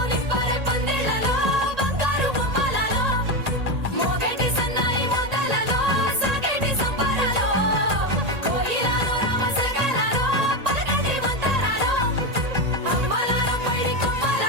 నింపరే పందిళ్లలో బంగారు బొమ్మలలో మోగేటి సన్నాయి మొదలలో సాగేటి సంబరాలో కోయిలలో రామసగలలో పలకటి మంతరాలో అమ్మలాల పైడి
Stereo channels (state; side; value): late; left; 1.8 ms